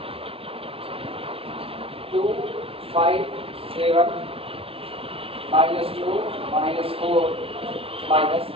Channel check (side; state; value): left; late; 0.27 ms